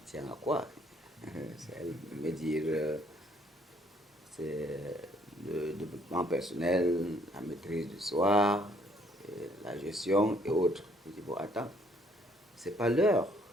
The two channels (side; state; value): both; normal; correlation 0.64